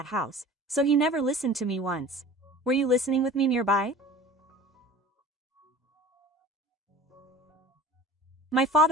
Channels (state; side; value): normal; both; correlation 0.42